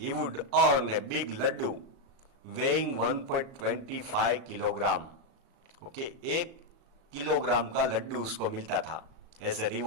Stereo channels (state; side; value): late; left; 36 ms